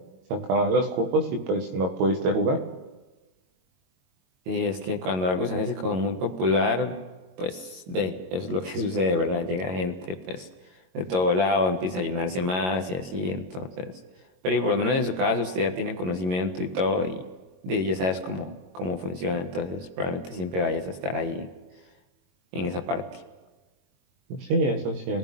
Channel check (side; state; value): left; late; 22 ms